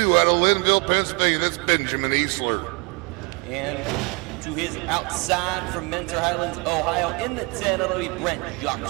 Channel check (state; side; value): quieter; left; 29.5 dB